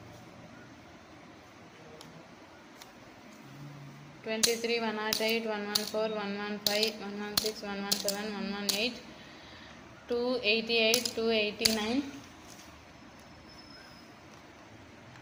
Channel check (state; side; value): identical; both; correlation 1.00